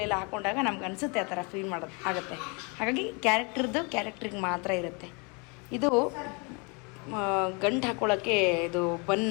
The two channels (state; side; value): quieter; right; 31.8 dB